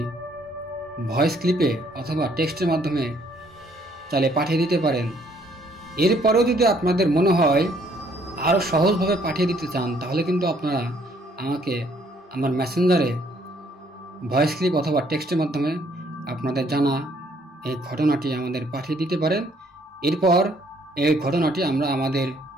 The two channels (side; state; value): both; normal; correlation 0.65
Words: ভয়েস ক্লিপে অথবা টেক্সটের মাধ্যমে চাইলে পাঠিয়ে দিতে পারেন। এরপরেও যদি আপনাদের মনে হয় আরও সহজভাবে পাঠিয়ে দিতে চান, তাহলে কিন্তু আপনারা আমাকে আমার মেসেঞ্জারে ভয়েস ক্লিপ অথবা টেক্সটের মাধ্যমে আপনাদের জানা এই ঘটনাটি আমাদের পাঠিয়ে দিতে পারেন। এরপর এই ঘটনাটি আমরা আমাদের